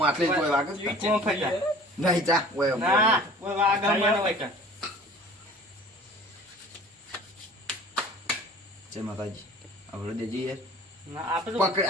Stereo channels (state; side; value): normal; both; correlation 0.46